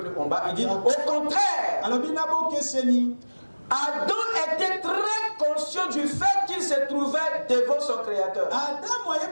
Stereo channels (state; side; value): inverted; both; correlation -1.00